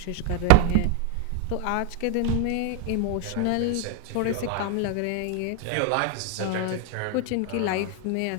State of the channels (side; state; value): both; different; correlation 0.01